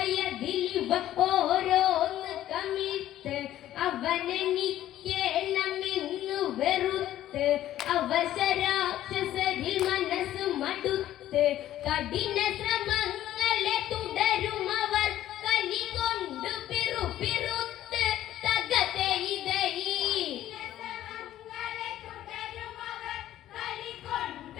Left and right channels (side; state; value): right; quieter; 13.0 dB